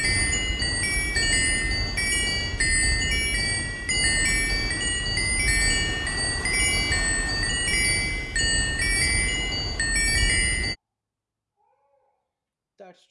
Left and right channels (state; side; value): identical; both; correlation 1.00